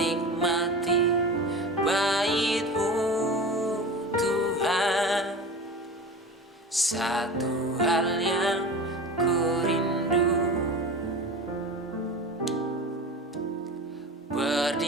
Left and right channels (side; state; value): both; normal; correlation 0.32